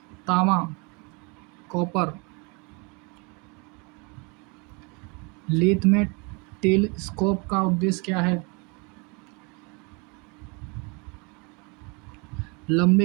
तांबा। कॉपर। लेथ में टेलीस्कोप का उद्देश्य क्या है? लंबे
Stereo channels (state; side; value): quieter; left; 31.1 dB